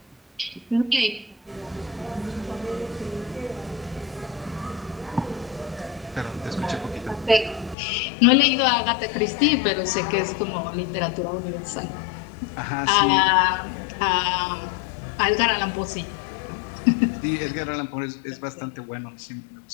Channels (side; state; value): right; drops out; at 7.8 s